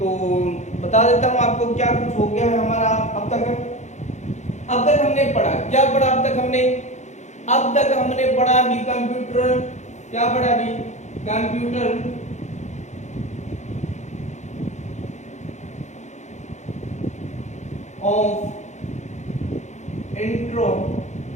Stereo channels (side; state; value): right; late; 0.34 ms